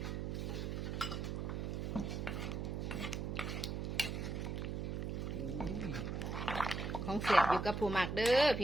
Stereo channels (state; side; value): noise; right; hum, 2 dB below the sound